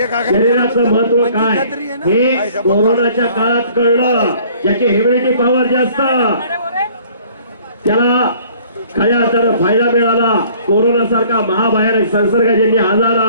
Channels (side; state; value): both; inverted; correlation -0.55